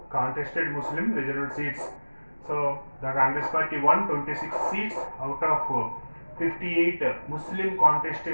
contested Muslim reserved seats. So the Congress party won 26 seats out of 58 Muslim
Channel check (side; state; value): both; inverted; correlation -1.00